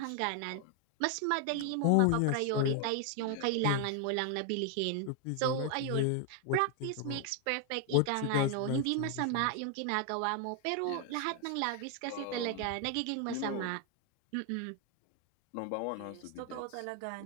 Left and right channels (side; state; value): both; different; correlation 0.00